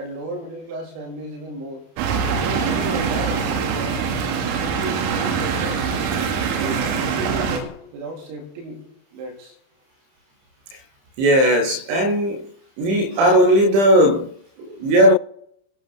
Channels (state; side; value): late; left; 30 ms